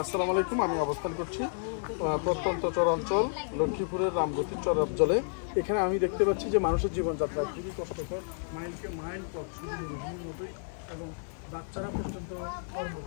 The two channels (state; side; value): silent; right; digital silence